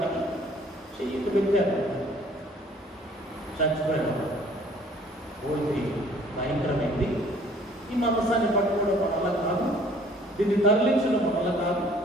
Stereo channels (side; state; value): both; normal; correlation 0.55